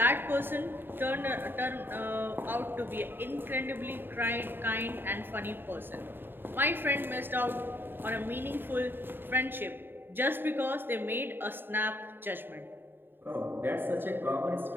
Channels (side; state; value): left; late; 0.098 ms